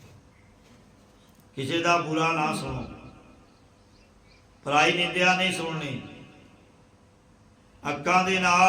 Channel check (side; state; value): both; identical; correlation 1.00